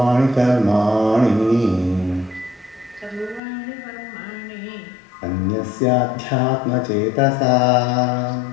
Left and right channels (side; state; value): right; drops out; at 3.4 s